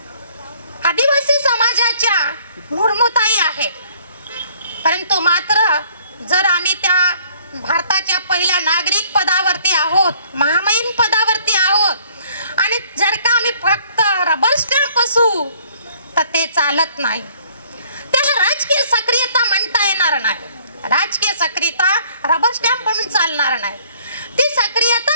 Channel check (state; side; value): inverted; both; correlation -0.60